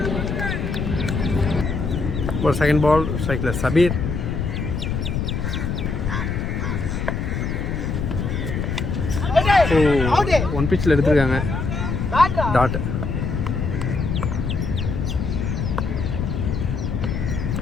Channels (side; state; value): left; noise; rumble, 2 dB below the sound